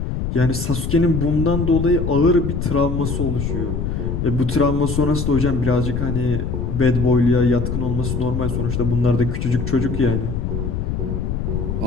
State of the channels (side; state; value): left; noise; rumble, 2 dB below the sound